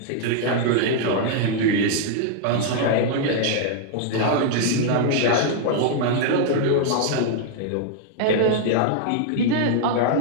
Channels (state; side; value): different; both; correlation 0.00